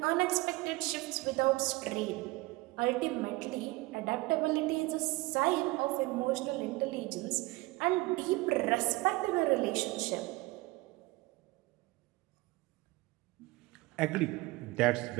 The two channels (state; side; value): quieter; left; 21.8 dB